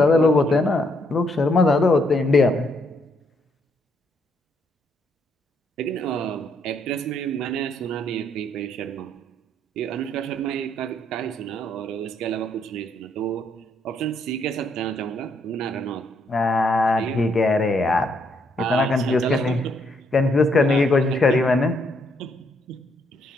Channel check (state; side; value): normal; both; correlation 0.73